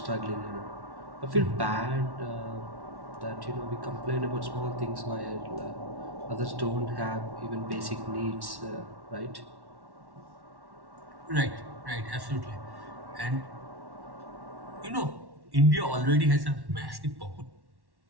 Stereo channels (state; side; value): late; left; 1.1 ms